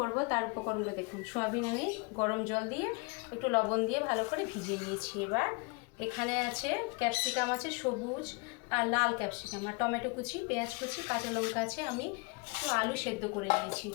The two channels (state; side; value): quieter; right; 30.2 dB